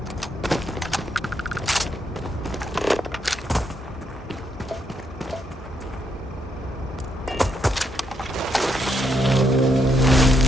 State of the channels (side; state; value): both; normal; correlation 0.77